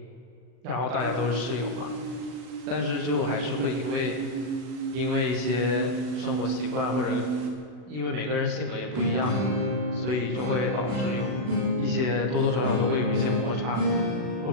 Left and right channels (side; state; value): left; late; 40 ms